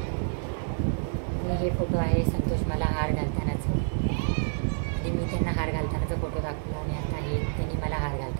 आणि हे फोटो आहे संतोष मला हार घालतानाचं, आणि मी त्यांना हार घालतानाचा फोटो दाखवला. आणि आता हे त्यांनी मला हार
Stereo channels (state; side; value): silent; left; digital silence